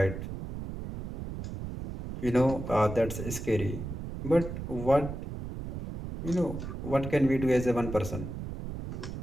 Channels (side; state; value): right; noise; rumble, 7 dB below the sound